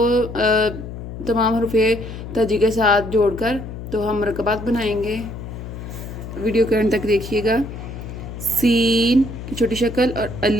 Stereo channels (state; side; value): noise; left; hum, 10 dB below the sound